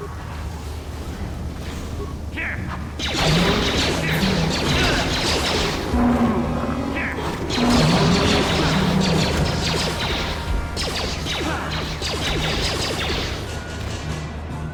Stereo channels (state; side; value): identical; both; correlation 1.00